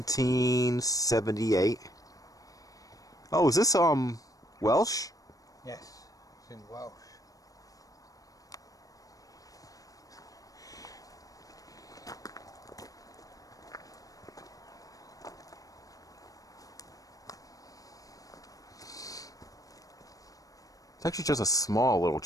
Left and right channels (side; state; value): right; late; 0.17 ms